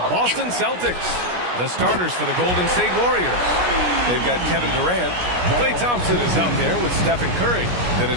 Celtics. The starters for the Golden State Warriors. They've got Kevin Durant. Klay Thompson is out there with Stephen Curry. Then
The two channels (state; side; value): late; left; 17 ms